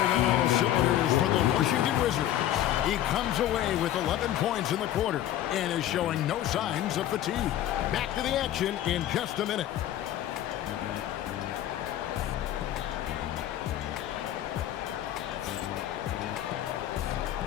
on all cylinders for the Washington Wizards. He comes away with 11 points in the quarter and is showing no signs of fatigue. Back to the action in just a minute.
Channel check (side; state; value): right; quieter; 12.4 dB